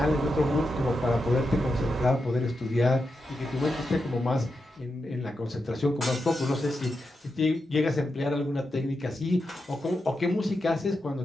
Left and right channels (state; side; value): normal; both; correlation 0.87